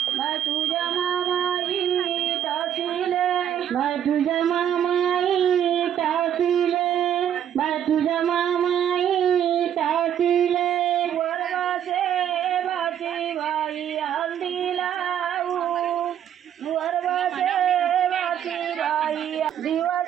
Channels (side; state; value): left; quieter; 9.8 dB